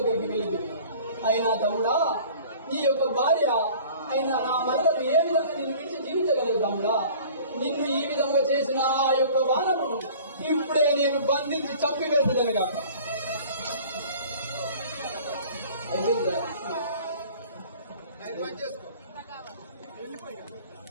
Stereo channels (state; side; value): inverted; both; correlation -0.46